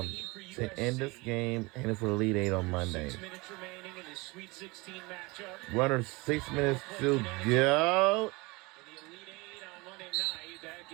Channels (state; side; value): quieter; left; 24.9 dB